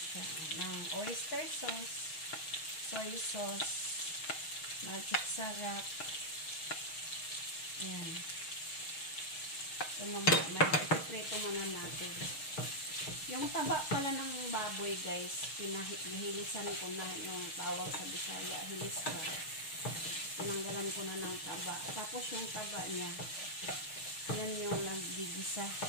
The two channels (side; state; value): right; late; 6.4 ms